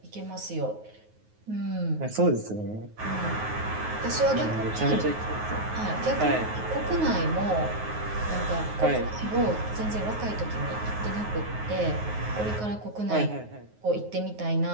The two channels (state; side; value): late; left; 9.4 ms